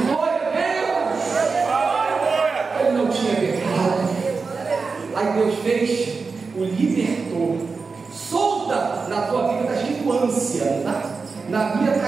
Glória a Deus. Ele não tinha pecado. Aí Deus fez, o libertou. Solta na tua vida, está escrito ânsia, na minha está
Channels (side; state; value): left; quieter; 4.6 dB